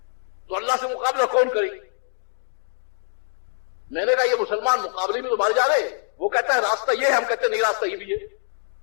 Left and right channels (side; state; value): right; silent; digital silence